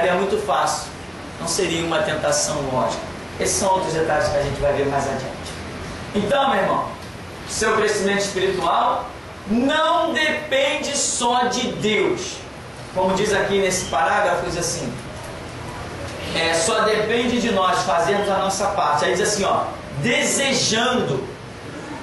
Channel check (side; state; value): both; identical; correlation 1.00